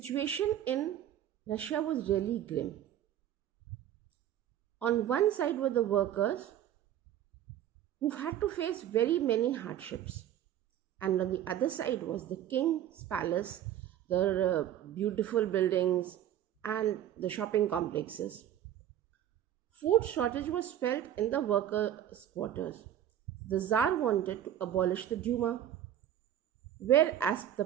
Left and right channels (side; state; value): left; quieter; 11.0 dB